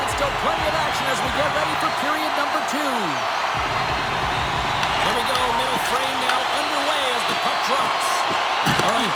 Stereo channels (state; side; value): identical; both; correlation 1.00